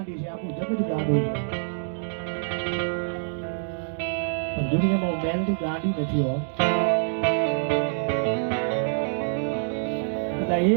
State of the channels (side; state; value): left; silent; digital silence